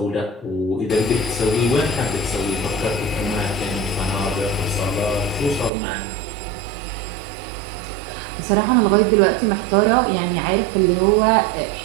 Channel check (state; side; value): drops out; left; at 5.7 s